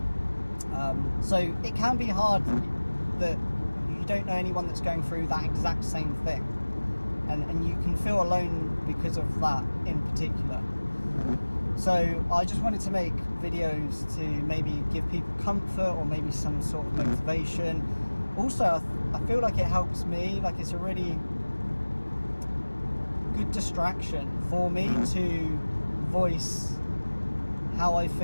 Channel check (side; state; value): both; inverted; correlation -1.00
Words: So it can be hard that you don't know anyone that's going through that exact same thing, and you can feel alone because of that in particular. So I just wanted to make videos to maybe give people comfort or maybe some sort of motivation. Also, I feel like it helps me, like it's a really good distraction for me to voice how I